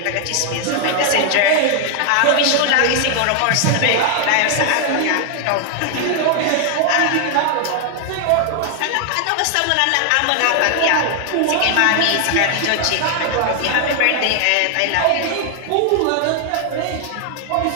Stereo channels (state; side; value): different; both; correlation 0.00